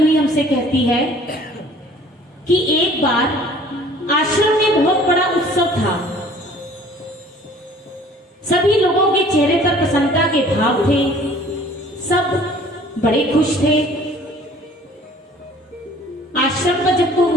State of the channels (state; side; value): normal; both; correlation 0.52